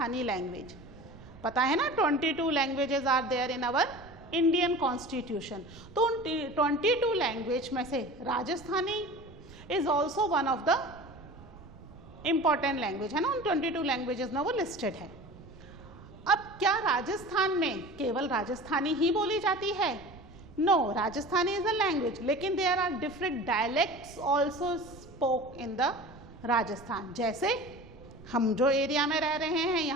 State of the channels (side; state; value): right; noise; rumble, 19 dB below the sound